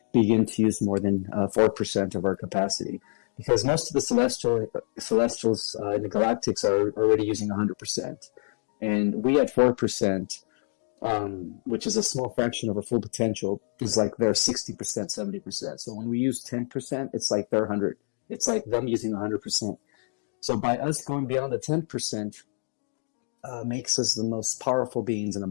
begin to use more than 4% of our capacity. Because most of the celestials in the galactics are already using 100%. And we at 4%, which is a small fraction of our full potential, is like they're 60%, 70%. So when we use 10%, it's like they're 100. It's like them using 100%. So by us going beyond the 10%, makes us the most powerful beings in the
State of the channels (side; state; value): right; silent; 60 dB below the other